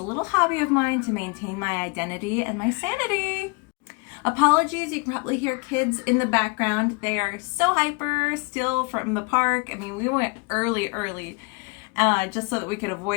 little hobby of mine to maintain my identity and my sanity. Apologies, you can probably hear kids in the background. They are so hyper still from the park. I mean, we went early, just so that we could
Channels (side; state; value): right; quieter; 30.6 dB